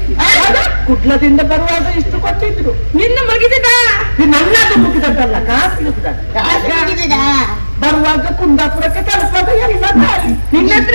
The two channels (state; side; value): inverted; both; correlation -1.00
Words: ಕುಟ್ಲದಿಂದ ಬರುವಾಗ ಇಷ್ಟು ಕೊಟ್ಟಿದ್ರು ನಿನ್ನ ಮುಗಿದ ನನ್ನದು ಮುಗಿದದ್ದಲ್ಲ ಕಾಸು ಮುಗಿದ ಬರುವಾಗ ಕುಂದಾಪುರಕ್ಕೆ ತಲುಪದ ಎಲ್ಲ ನಿನ್ನ ಹತ್ರ